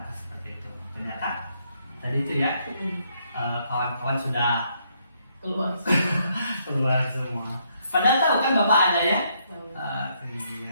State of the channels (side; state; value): both; inverted; correlation -0.73